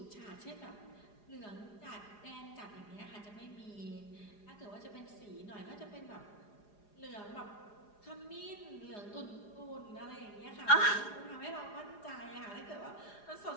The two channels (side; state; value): right; late; 4.9 ms